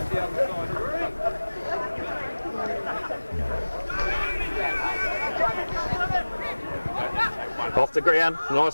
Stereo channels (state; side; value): inverted; both; correlation -1.00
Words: Off the ground,